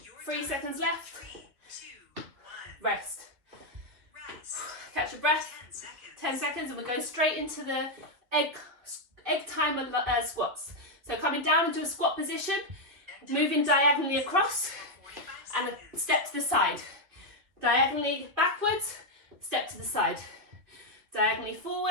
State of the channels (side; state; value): left; late; 2.9 ms